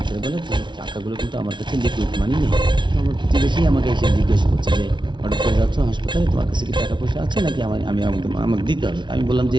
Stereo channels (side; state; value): left; late; 0.23 ms